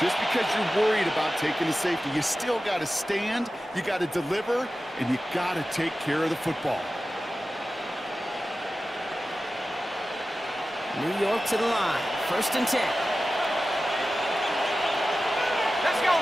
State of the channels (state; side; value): normal; both; correlation 0.94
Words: Just because you're worried about taking a safety, you still got to stand, you got to deliver, and you got to take care of the football. New York to the line. 1st and 10. Let's go